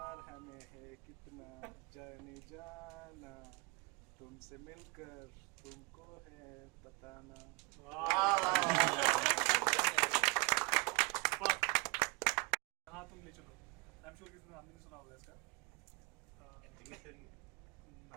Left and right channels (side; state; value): left; quieter; 26.1 dB